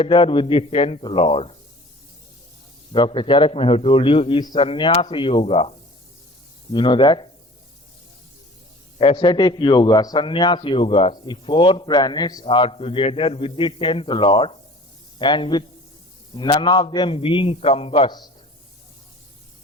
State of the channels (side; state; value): both; normal; correlation 0.45